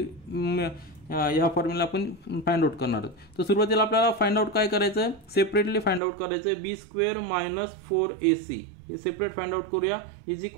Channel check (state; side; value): drops out; left; at 6.0 s